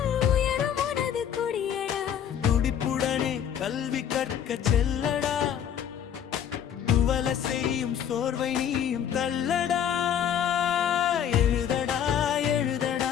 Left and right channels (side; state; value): right; quieter; 9.0 dB